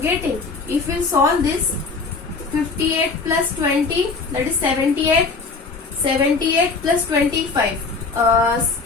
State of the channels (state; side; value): quieter; right; 4.3 dB